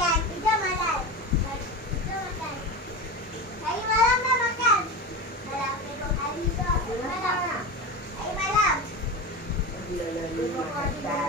Kejap makan. Kejap makan. Hari malam dah makan. Malam tengok hari tu. Malam. Hari malam.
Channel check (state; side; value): normal; both; correlation 0.25